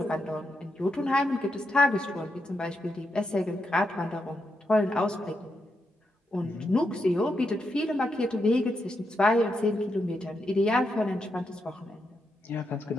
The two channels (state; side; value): normal; both; correlation 0.83